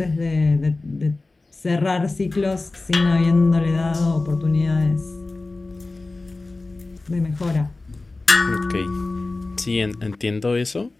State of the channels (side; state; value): right; quieter; 3.3 dB